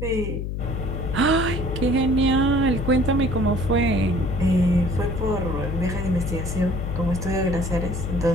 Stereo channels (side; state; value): left; noise; hum, 4 dB below the sound